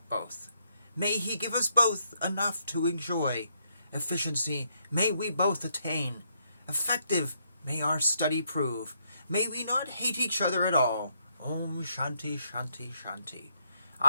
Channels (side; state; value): both; inverted; correlation -0.76